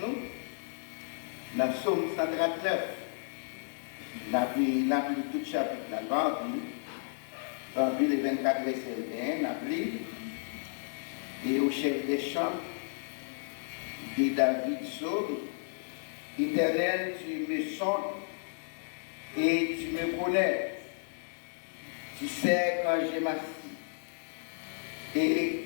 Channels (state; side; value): silent; right; digital silence